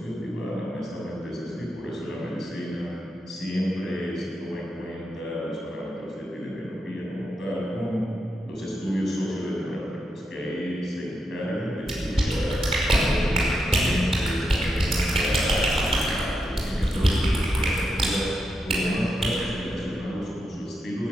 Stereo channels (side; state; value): both; normal; correlation 0.85